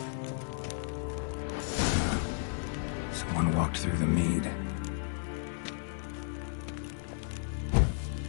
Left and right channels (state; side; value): silent; right; digital silence